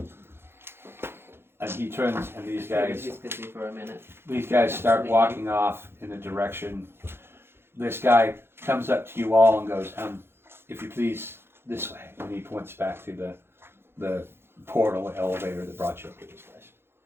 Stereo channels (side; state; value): left; late; 0.11 ms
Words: And he turns, and these guys He's busy for a minute. start walking off in a direction. This guy comes up to you all and goes, if you please, this way. And he points back to the portal elevator that brought you up to this place.